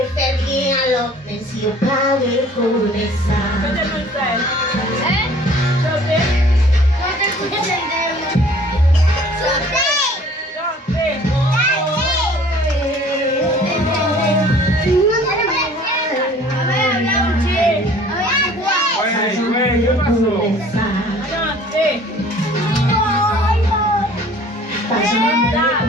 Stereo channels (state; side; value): normal; both; correlation 0.51